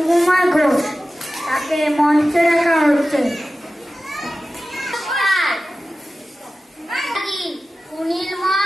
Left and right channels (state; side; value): normal; both; correlation 0.95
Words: ঘোষ তাকে মঞ্চে রাখা হচ্ছে।